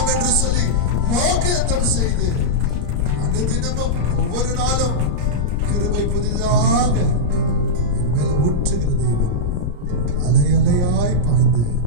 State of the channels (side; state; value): left; late; 34 ms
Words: என்று சொல்லி வாக்குத்தத்தம் செய்து அனுதினமும் ஒவ்வொரு நாளும் கிருபை புதிதாக என் மேல ஊற்றுகிற தேவன், அலை அலையாய் பாய்ந்து